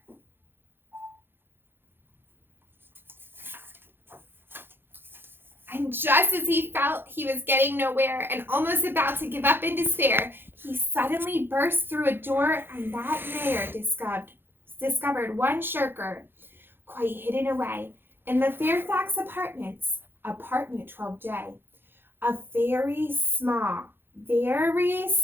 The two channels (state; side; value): late; left; 0.10 ms